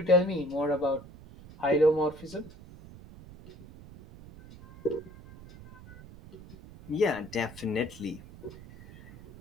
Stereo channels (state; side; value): noise; right; rumble, 18 dB below the sound